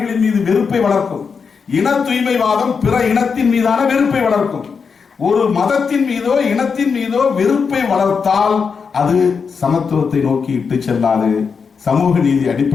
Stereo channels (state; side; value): quieter; right; 5.7 dB